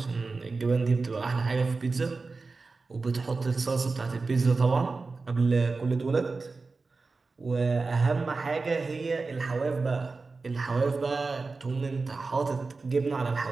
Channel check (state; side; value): quieter; left; 4.0 dB